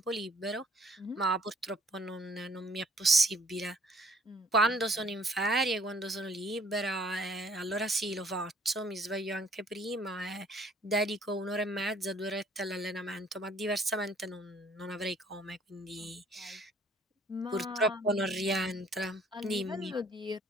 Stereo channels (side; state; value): both; normal; correlation 0.59